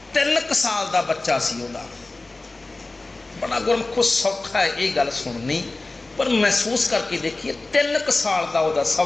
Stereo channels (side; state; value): right; quieter; 3.2 dB